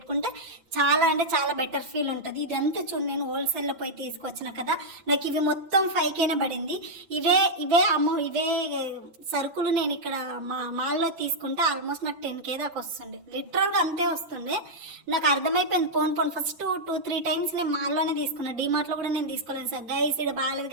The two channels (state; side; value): late; left; 6.0 ms